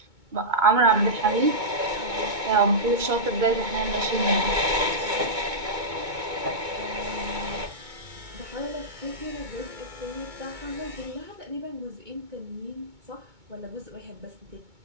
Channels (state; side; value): late; left; 2.2 ms